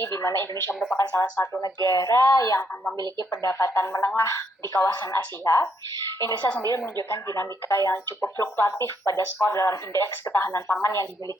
di mana Indonesia merupakan salah satu negara yang memiliki pendapatan menengah di kawasan Asia. Indonesia sendiri menunjukkan dinamika yang cukup fluktuatif pada skor dalam indeks ketahanan pangan yang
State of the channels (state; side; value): normal; both; correlation 0.74